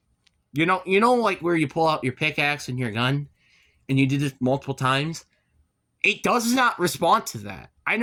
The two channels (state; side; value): identical; both; correlation 1.00